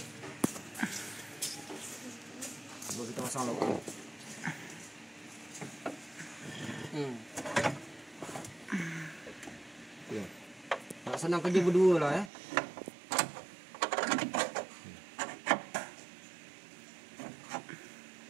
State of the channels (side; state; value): left; drops out; at 12.3 s